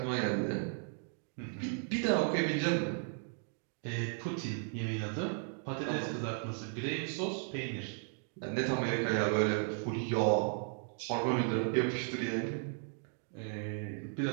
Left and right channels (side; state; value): left; silent; 54 dB below the other